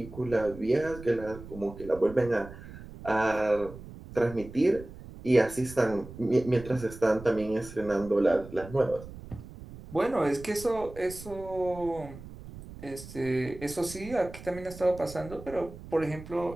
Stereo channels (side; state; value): right; noise; rumble, 15 dB below the sound